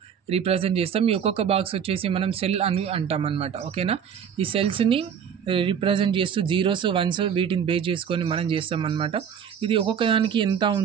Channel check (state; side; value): quieter; left; 7.9 dB